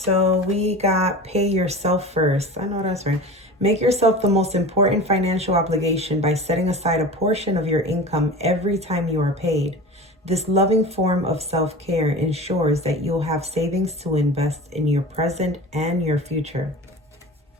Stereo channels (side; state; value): both; normal; correlation 0.35